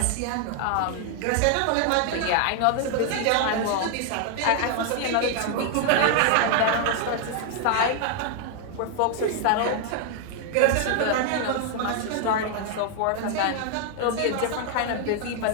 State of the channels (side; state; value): both; different; correlation 0.00